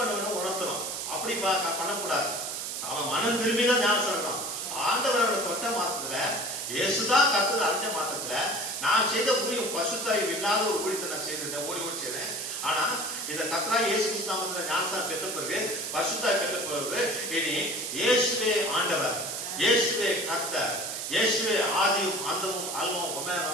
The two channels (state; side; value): noise; right; hiss, 4 dB below the sound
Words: வேணும், உணர்த்தணும். அப்படி பண்ணக்கூடாது. அவன் மனம் திரும்பிதான் ஞானஸ்நானம். ஆண்டவரோட தொட்ட மாற்றத்துல, இயேசுதான் கர்த்தர் அறிஞ்ச மாற்றத்துல நான் செய்த ஊழியம் பசுத்தாய் இல்லாத ஒரு ஊழியத்தை நான் செய்திருந்தேன், ஓடி செய்தேன். ஆனா இந்த கர்த்தராகிய இயேசு கிறிஸ்து நாமத்துல ஞானஸ்நானம் பெற்ற பிறகு, பசுத்தாய் பெற்ற பிறகு, இனி இயேசுவே ஆண்டவர், இயேசுவே கர்த்தர், இயேசுவே ஆதியும் அந்தமும் அல்பமும்